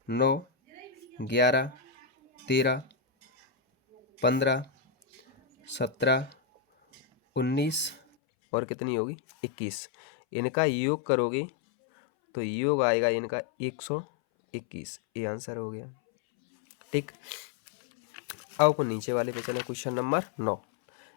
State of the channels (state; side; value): drops out; right; at 8.0 s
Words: 9 11 13 15 17 19 और कितनी होगी? 21। इनका योग करोगे तो योग आएगा इनका 121। ये आंसर हो गया। ठीक। अब अपन नीचे वाले पे चले, क्वेश्चन नंबर 9।